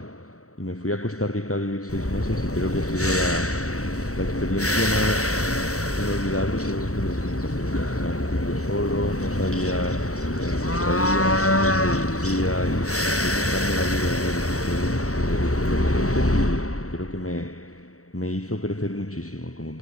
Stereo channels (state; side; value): late; right; 0.65 ms